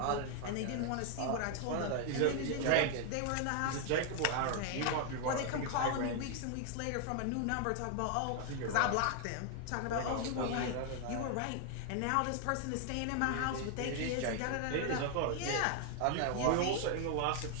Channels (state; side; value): different; both; correlation 0.00